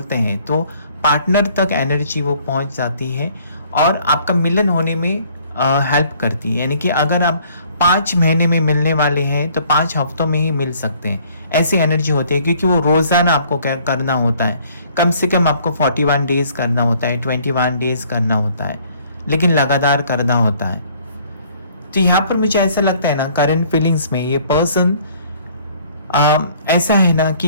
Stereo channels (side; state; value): both; inverted; correlation -0.59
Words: हैं तो पार्टनर तक एनर्जी वो पहुंच जाती है और आपका मिलन होने में हेल्प करती है। यानी कि अगर आप 5 महीने में मिलने वाले हैं तो 5 हफ्तों में ही मिल सकते हैं, ऐसी एनर्जी होती है। क्योंकि वो रोज़ाना आपको क्या करना होता है, कम से कम आपको 41 डेज करना होता है, 21 डेज करना होता है, लेकिन लगातार करना होता है। तो यहाँ पर मुझे ऐसा लगता है ना, करंट फीलिंग्स में ये पर्सन ऐसा है ना